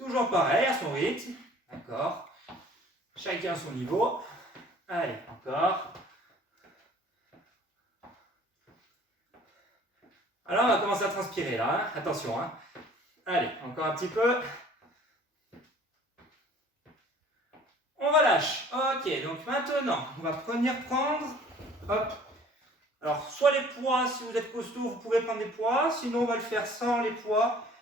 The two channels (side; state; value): both; normal; correlation 0.51